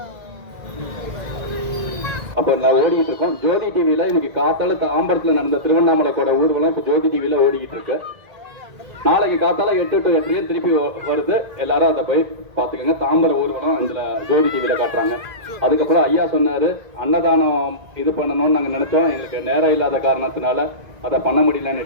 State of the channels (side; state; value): left; late; 1.8 ms